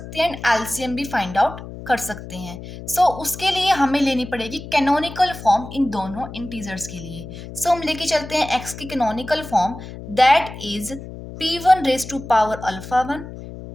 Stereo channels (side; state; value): left; noise; hum, 12 dB below the sound